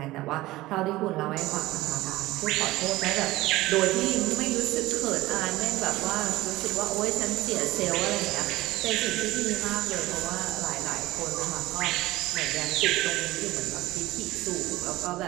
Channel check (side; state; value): left; quieter; 18.0 dB